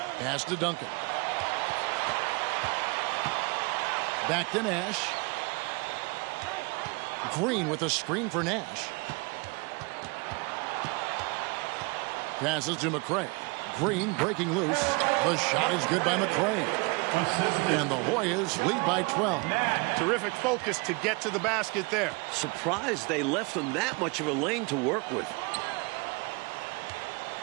Pass to Duncan. Back to Nash. Green with a screen for Nash. Passes to McCray. Green breaking loose. The shot is good by McCray. And the Hoyas lead by 12. Terrific focus to get to the basket there. Surprised they left them that much of a lane to work with.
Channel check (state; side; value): quieter; left; 28.6 dB